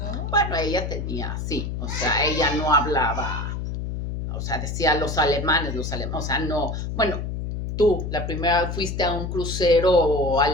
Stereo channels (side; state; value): left; noise; hum, 4 dB below the sound